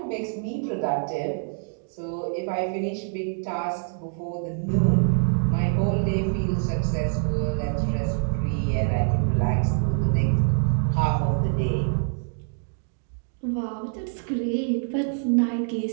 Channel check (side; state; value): left; silent; 61 dB below the other